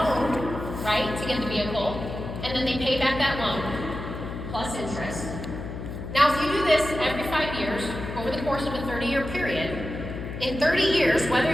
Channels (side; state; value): left; noise; hum, 8 dB below the sound